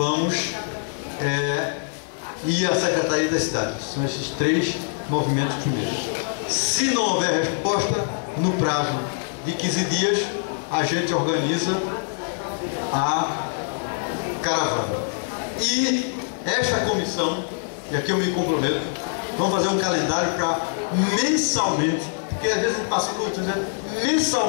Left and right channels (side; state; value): right; silent; digital silence